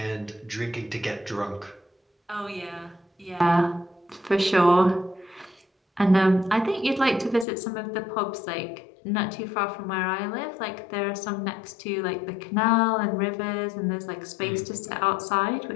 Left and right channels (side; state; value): right; drops out; at 7.5 s